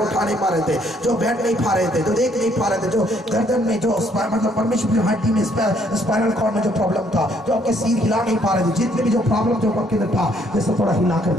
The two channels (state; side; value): normal; both; correlation 0.67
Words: नहीं पा रहे थे, जो बैठ नहीं पा रहे थे, जो देख नहीं पा रहे थे, जो गर्दन में जो मतलब परमेश्वर हड्डी में स्पाइनल कॉर्ड में जो प्रॉब्लम था, जो आपके सिर हिला नहीं पा रहे थे, जितने भी जो प्रॉब्लम जो आपके अंदर था, जैसे थोड़ा हिला कर